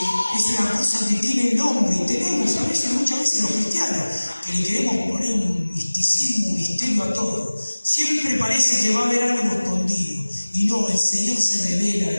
una cosa que tiene nombre, y tenemos muchas veces los cristianos, que le queremos poner un misticismo, un misterio a todo. Siempre parece que va a haber algo escondido. Y no, el Señor se revela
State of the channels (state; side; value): inverted; both; correlation -1.00